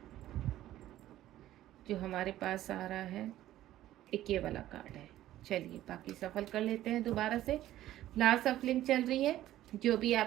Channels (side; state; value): left; quieter; 13.8 dB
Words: जो हमारे पास आ रहा है, एक ये वाला कार्ड है। चलिए बाकी सफल कर लेते हैं दोबारा से। लास्ट सफलिंग चल रही है। जो भी